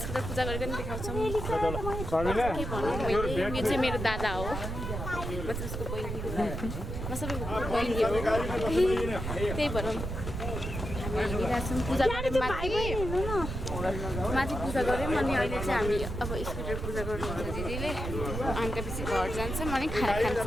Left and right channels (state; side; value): noise; right; rumble, 5 dB below the sound